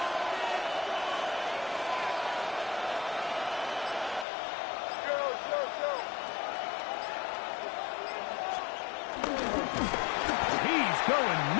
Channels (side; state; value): right; drops out; at 4.2 s